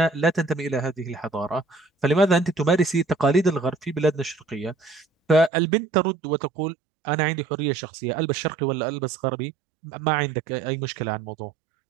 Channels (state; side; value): drops out; left; at 5.5 s